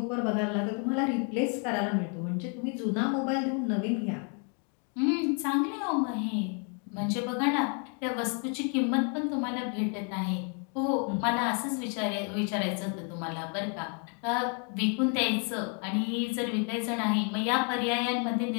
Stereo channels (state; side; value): quieter; right; 39.2 dB